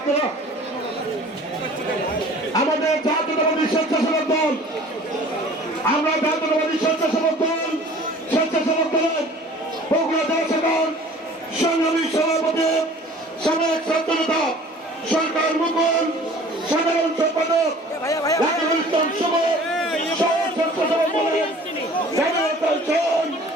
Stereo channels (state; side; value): normal; both; correlation 0.48